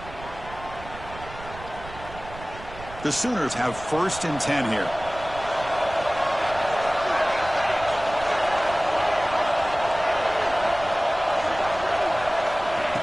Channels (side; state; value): right; noise; rumble, 15 dB below the sound